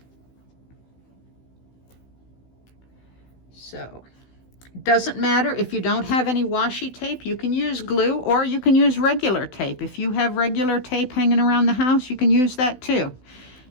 So it doesn't matter if you don't have any washi tape, you can use glue or you can use regular tape. If you have regular tape hanging around the house, you can use that too.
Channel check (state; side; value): late; right; 16 ms